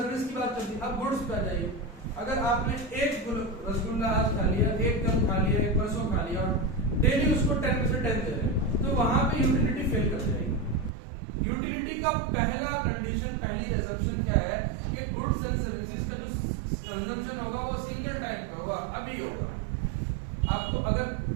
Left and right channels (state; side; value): drops out; left; at 10.9 s